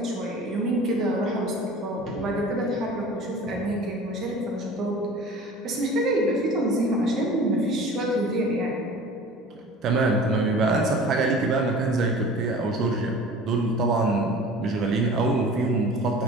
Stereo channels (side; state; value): both; normal; correlation 0.42